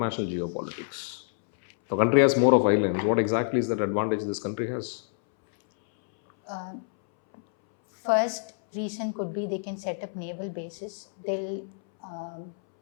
geopolitics? The country has more of islands. What exactly is that advantage this country has? First reason could be they can set up naval bases.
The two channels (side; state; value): right; silent; 60 dB below the other